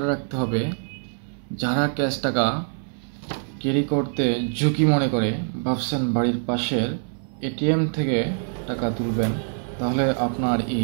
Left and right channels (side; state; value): left; silent; 62 dB below the other